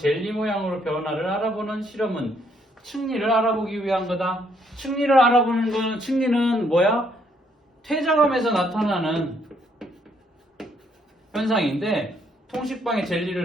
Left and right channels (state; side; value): normal; both; correlation 0.70